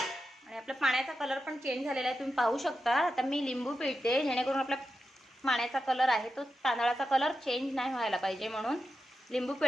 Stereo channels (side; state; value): both; normal; correlation 0.89